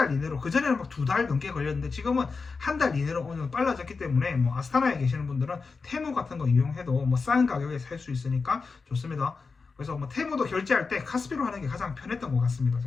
이내로, 그 전에는 막 2달 넘게 걸렸는데 지금은 한 달 이내로 어느 정도 빨라졌기 때문에, 뭐 아스타나에 계시는 분들은 테무 같은 거 이용해도 뭐 싼 가격에 살 수 있으니까 좋습니다. 그래서 뭐 테무도 결제할 때 카스피로 하는 게 가장 편했던 것 같습니다,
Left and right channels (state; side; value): quieter; right; 4.6 dB